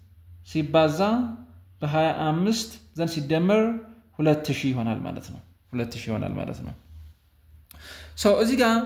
ሲባዛ በ25 then ሲደመር 2000 ይሆናል ማለት ነው 2000 ይሆናል ማለት ነው። ሶ እዚህ ጋር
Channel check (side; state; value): both; identical; correlation 1.00